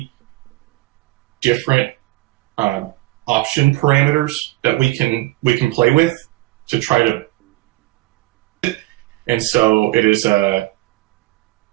different option parameters that we can play with to try to, and so it is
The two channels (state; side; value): quieter; left; 19.2 dB